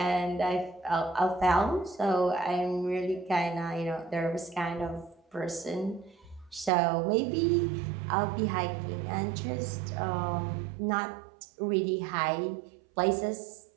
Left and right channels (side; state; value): left; drops out; at 6.7 s